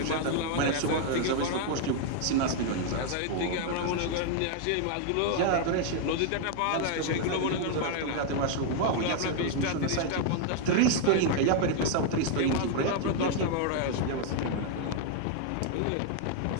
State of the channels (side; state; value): both; different; correlation 0.00